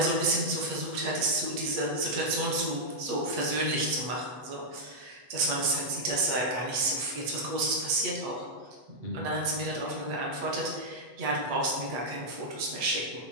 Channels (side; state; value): left; late; 8.4 ms